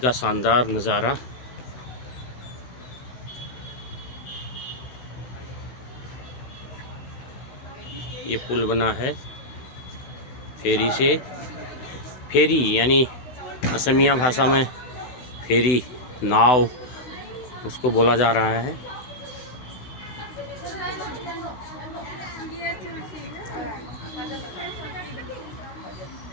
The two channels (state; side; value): late; right; 16 ms